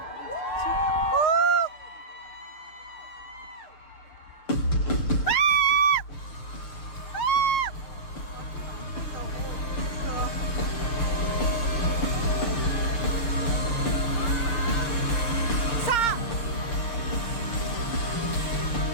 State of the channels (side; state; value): right; late; 6.5 ms